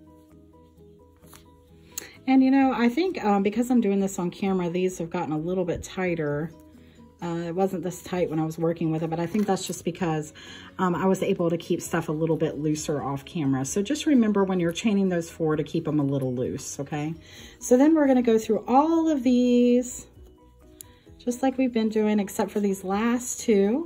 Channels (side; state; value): both; identical; correlation 1.00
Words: And you know, I think because I'm doing this on camera, these have gotten a little bit tighter. It wasn't this tight when I was working with it, but I think that's just because I was able to keep stuff a little bit looser off camera. So just remember when you're chaining those 4 to keep them a little loose, okay? So then we're going to go through all of these, just like we've been doing, except for these last